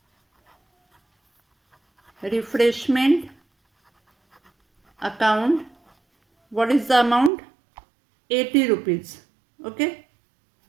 refreshment account. What is the amount? 80 rupees. Okay,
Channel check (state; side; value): drops out; left; at 7.3 s